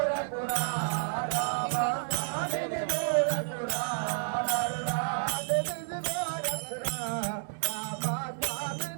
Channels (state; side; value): silent; left; digital silence